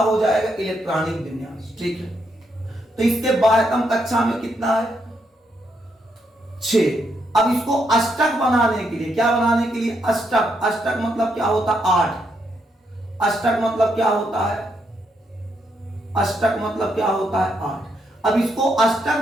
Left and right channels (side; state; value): both; normal; correlation 0.78